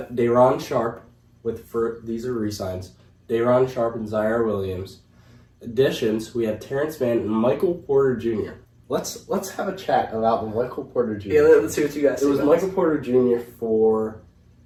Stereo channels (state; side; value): identical; both; correlation 1.00